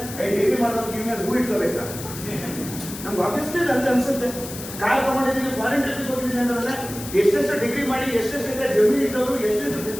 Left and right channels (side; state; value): left; noise; hiss, 11 dB below the sound